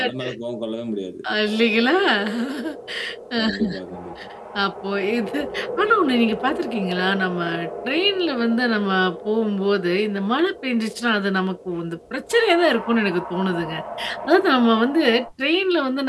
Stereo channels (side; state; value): both; identical; correlation 1.00